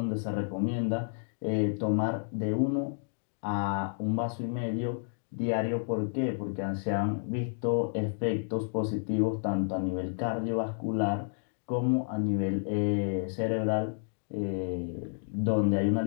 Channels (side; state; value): right; silent; digital silence